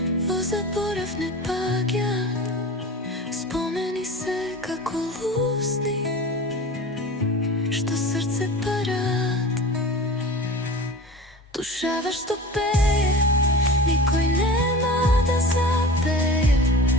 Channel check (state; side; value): normal; both; correlation 0.35